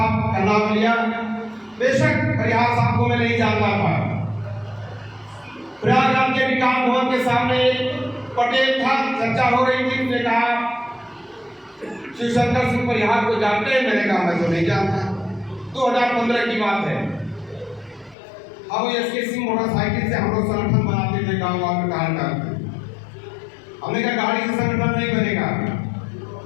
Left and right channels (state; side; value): drops out; right; at 18.2 s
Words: का नाम लिया, बेशक परिहार साहब को मैं नहीं जानता था। प्रयागराज के विकास भवन के सामने पटेल था, चर्चा हो रही थी, उसने कहा शिवशंकर सिंह परिहार को जानते हैं? मैंने कहा मैं तो नहीं जानता। 2015 की बात है। हम एसके सिंह मोटरसाइकिल से हम लोग संगठन बनाते थे गाँव में कहा हमने कहा गाड़ी से संगठन नहीं बनेगा।